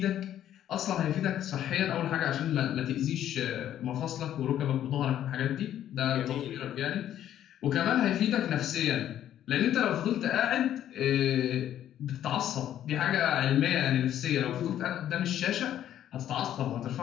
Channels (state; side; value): quieter; right; 11.2 dB